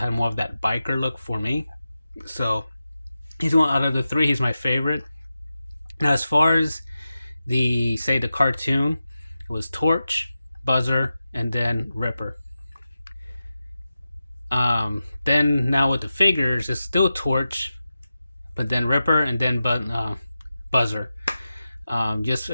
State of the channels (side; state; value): both; inverted; correlation -0.92